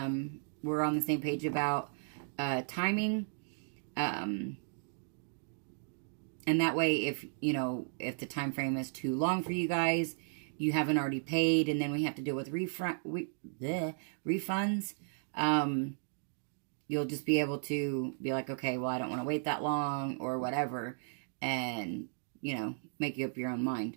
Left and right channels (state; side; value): silent; left; digital silence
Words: we're on the same page about timing. And that way, if the time frame is too long for you guys, you haven't already paid, and then we have to deal with refunds, you'll just be able to be like, okay, well, I don't want to wait that long or whatever, and, make you up your own